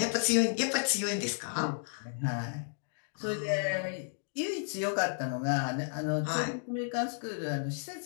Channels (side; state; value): right; silent; digital silence